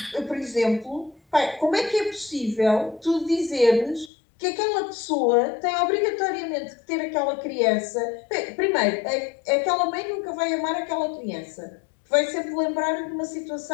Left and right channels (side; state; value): right; drops out; at 4.1 s